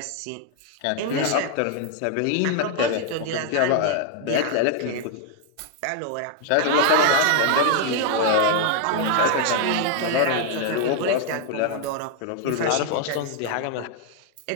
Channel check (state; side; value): different; both; correlation 0.00